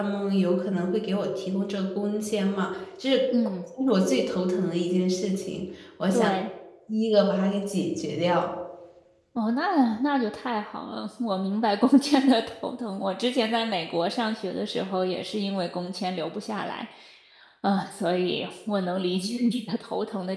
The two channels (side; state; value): both; identical; correlation 1.00